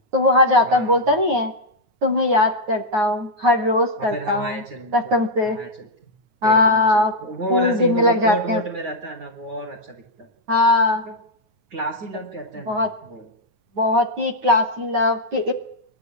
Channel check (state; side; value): late; left; 9.4 ms